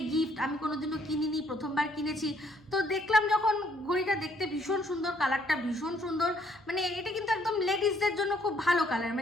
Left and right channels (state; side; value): noise; right; hum, 27 dB below the sound